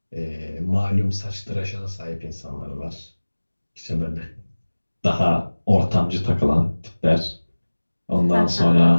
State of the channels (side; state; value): both; inverted; correlation -1.00